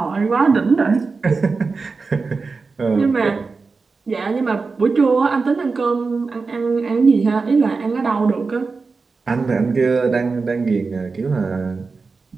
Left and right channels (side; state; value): left; quieter; 4.4 dB